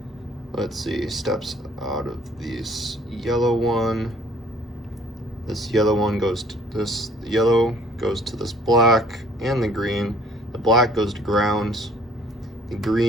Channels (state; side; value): normal; both; correlation 0.56